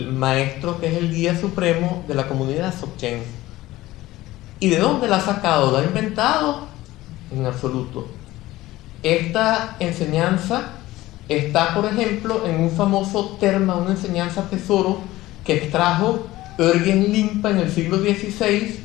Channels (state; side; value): quieter; right; 17.0 dB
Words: maestro que es el guía supremo de la comunidad Dzogchen. ¿Y de dónde la ha sacado? ¿La ha inventado? En absoluto. Esta enseñanza está, por ejemplo, en un famoso terma, una enseñanza tesoro que extrajo Örgen Limpa en el siglo XVI,